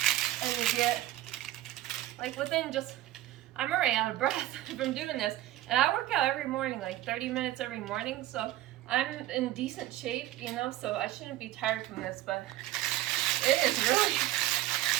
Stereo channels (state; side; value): quieter; left; 15.3 dB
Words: And you get, like within just, I'm already out of breath from doing this. And I work out every morning, like 30 minutes every morning. So I'm in decent shape, you know, so I shouldn't be tired from this. But it is really